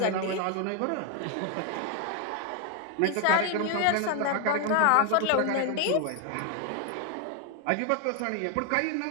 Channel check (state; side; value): different; both; correlation 0.01